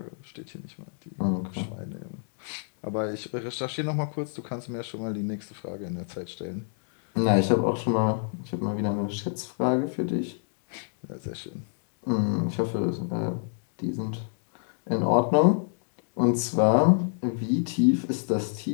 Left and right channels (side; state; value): right; silent; digital silence